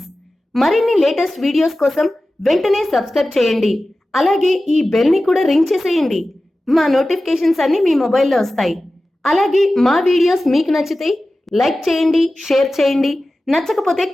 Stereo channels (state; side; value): normal; both; correlation 0.95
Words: మరిన్ని లేటెస్ట్ వీడియోస్ కోసం వెంటనే సబ్స్క్రైబ్ చేయండి. అలాగే ఈ బెల్ ని కూడా రింగ్ చేసేయండి. మా నోటిఫికేషన్స్ అన్ని మీ మొబైల్లో వస్తాయి. అలాగే మా వీడియోస్ మీకు నచ్చితే లైక్ చేయండి, షేర్ చేయండి, నచ్చకపోతే